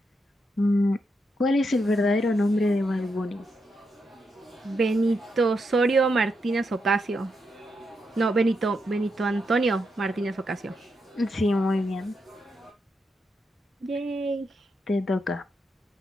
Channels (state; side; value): normal; both; correlation 0.83